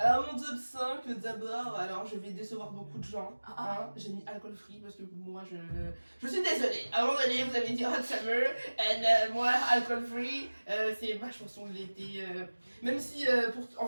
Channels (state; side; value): inverted; both; correlation -1.00